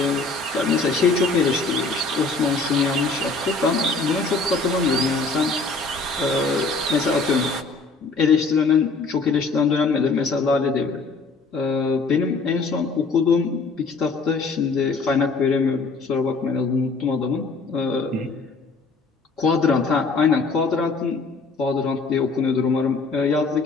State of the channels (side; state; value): right; quieter; 3.9 dB